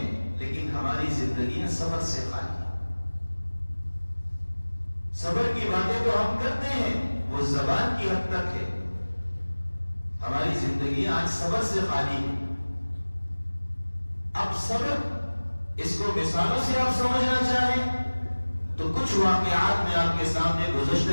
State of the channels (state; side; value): inverted; both; correlation -1.00